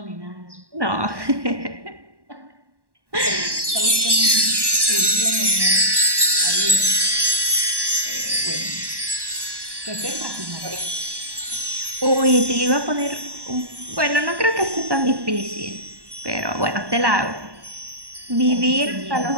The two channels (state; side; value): late; left; 1.1 ms